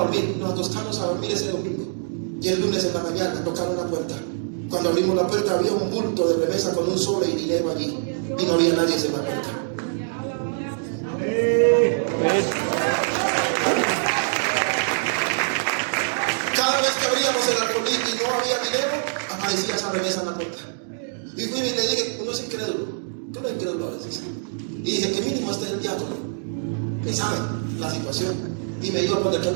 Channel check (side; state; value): left; silent; digital silence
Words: dormir. Nos acostamos a dormir ese domingo y el lunes en la mañana tocaron la puerta. Cuando abrimos la puerta había un bulto de remesa con un sobre y dinero allí y no había nadie en la puerta. Cada vez que abríamos el arbolí y no había dinero, aparecía esa remesa en la puerta. Y fui y le dije: uno es incrédulo, que uno es incrédulo a veces. Y dije: que mínimo este es el diácono, que sabe la situación. Y me iba a poner